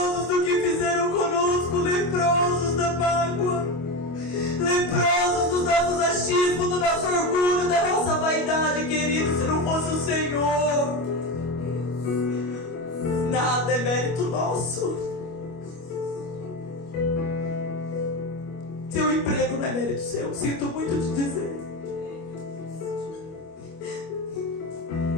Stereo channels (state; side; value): late; right; 25 ms